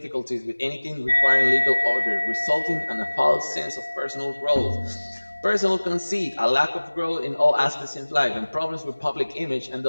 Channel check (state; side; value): inverted; both; correlation -1.00